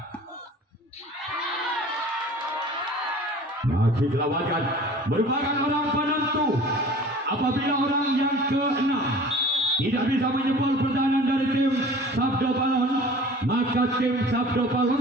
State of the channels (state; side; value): normal; both; correlation 0.44